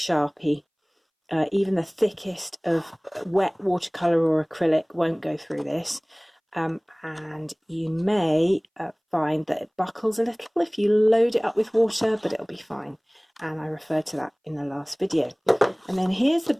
Even the thickest of wet watercolour or acrylic won't go through this. And you may find that it buckles a little if you load it up with water, but it'll be fine. And I referred to that in the last video. And then here's the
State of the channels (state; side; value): identical; both; correlation 1.00